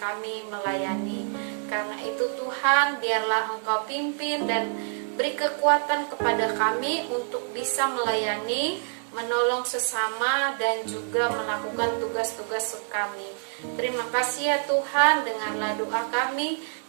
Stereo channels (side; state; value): left; silent; 60 dB below the other